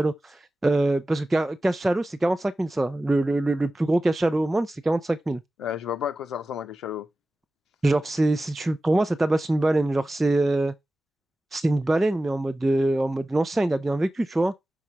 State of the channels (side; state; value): both; normal; correlation 0.95